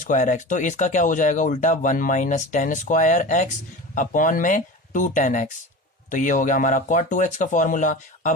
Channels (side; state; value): both; normal; correlation 0.32